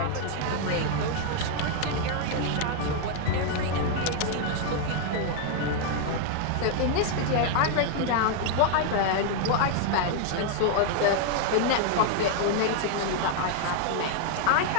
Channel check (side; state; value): both; different; correlation 0.00